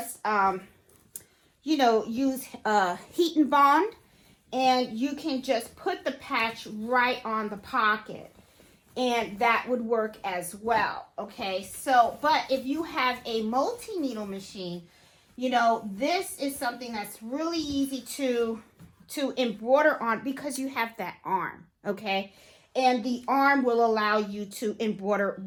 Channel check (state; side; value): identical; both; correlation 1.00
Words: you know, use heat and bond, and you can just put the patch right on the pocket. and that would work as well. Okay, so but if you have a multi-needle machine, you know, this is something that's really easy to embroider on because you have that arm. Okay, and the arm will allow you to embroider